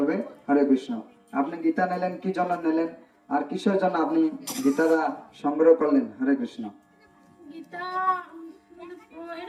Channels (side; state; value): both; identical; correlation 1.00